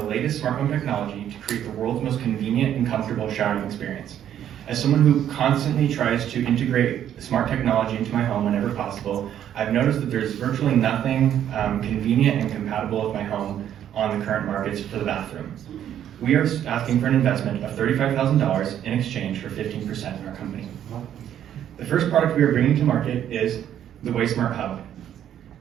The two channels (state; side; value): quieter; left; 10.4 dB